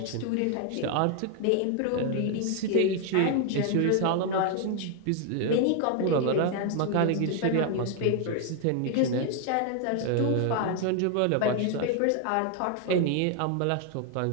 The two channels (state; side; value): different; both; correlation 0.00